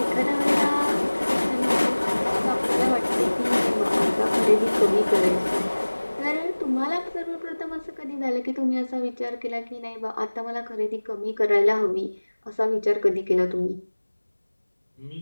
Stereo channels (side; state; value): both; inverted; correlation -1.00